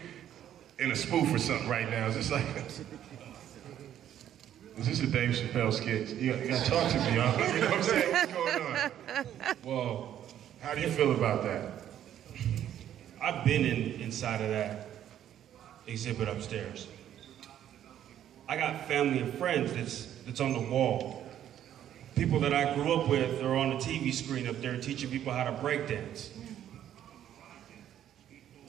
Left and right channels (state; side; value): quieter; left; 10.9 dB